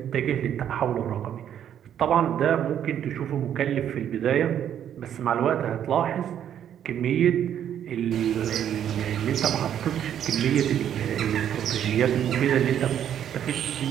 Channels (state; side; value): quieter; left; 9.8 dB